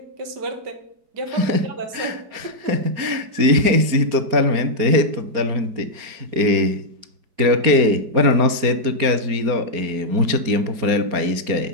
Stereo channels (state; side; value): late; left; 4.4 ms